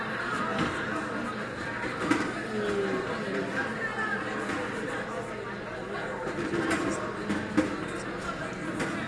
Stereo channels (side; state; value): both; identical; correlation 1.00